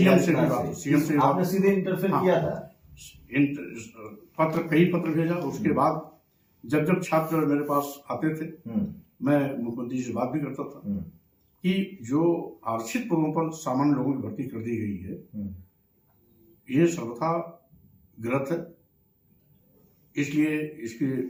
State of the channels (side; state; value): both; identical; correlation 1.00